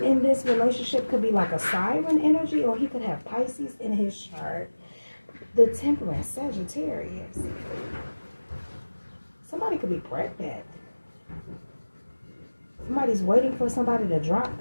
this relationship could be like a siren energy, or he could have Pisces in his chart. The Temperance, Sagittarius. Somebody could be pregnant. Somebody's waiting for somebody to drop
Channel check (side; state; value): both; inverted; correlation -1.00